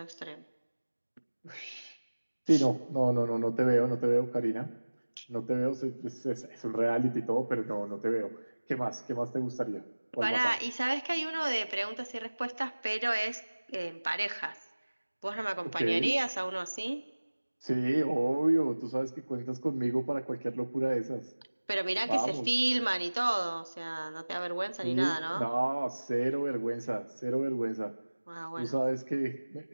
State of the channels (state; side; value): inverted; both; correlation -1.00